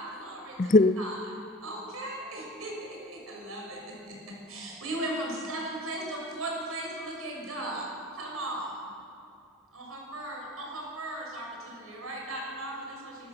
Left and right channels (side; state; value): both; normal; correlation 0.40